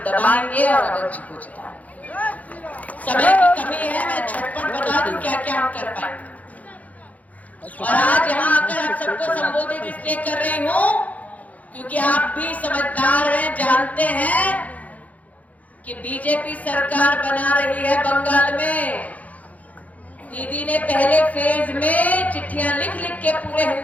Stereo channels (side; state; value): right; late; 0.073 ms